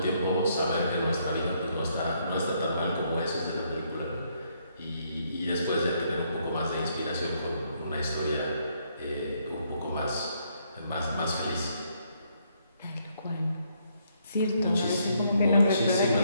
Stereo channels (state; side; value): inverted; both; correlation -0.72